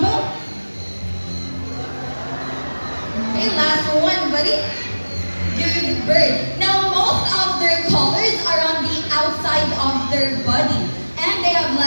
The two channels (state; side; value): inverted; both; correlation -1.00